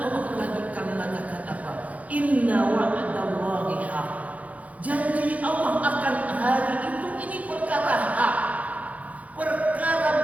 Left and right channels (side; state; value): left; late; 0.069 ms